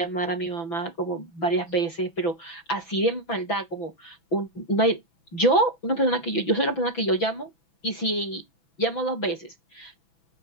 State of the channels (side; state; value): right; late; 6.0 ms